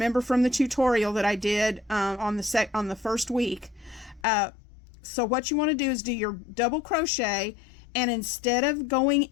from the tutorial that I did on the first week. So what you want to do is do your double crochet, and instead of going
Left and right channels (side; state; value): right; drops out; at 4.2 s